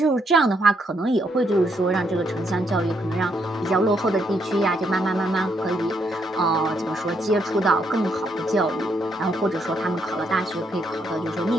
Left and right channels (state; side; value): normal; both; correlation 0.75